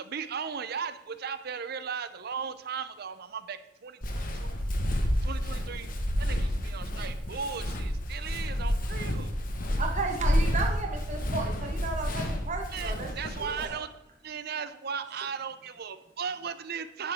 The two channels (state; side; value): normal; both; correlation 0.60